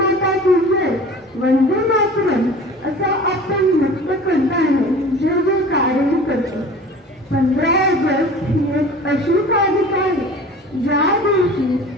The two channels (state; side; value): normal; both; correlation 0.41